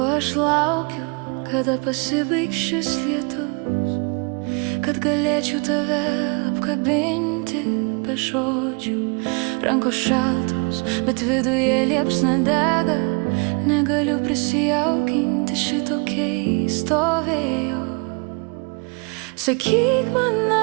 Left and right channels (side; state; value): left; quieter; 33.1 dB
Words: aš laukiu, kada pasibaigs šis lietus, kad galėčiau tave apkabinti be žodžių. Rankos šaltos, bet viduje liepsna dega. Negaliu prisijaukinti šito keisto vėjo. Sakyk man,